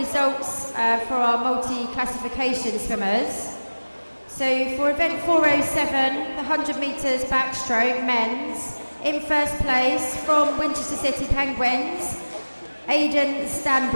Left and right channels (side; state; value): both; inverted; correlation -1.00